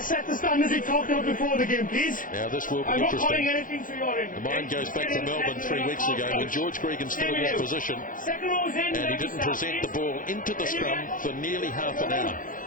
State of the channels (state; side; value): late; right; 0.39 ms